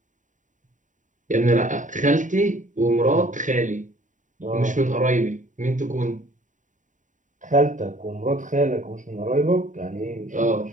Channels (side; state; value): left; late; 0.36 ms